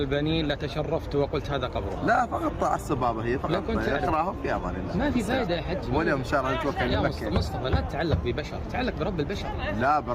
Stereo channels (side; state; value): both; identical; correlation 1.00